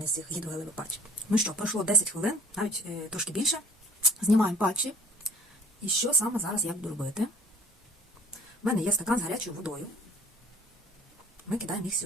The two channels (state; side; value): normal; both; correlation 0.53